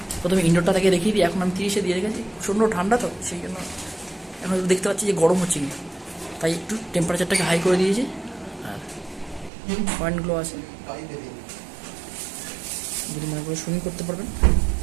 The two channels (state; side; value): drops out; left; at 9.5 s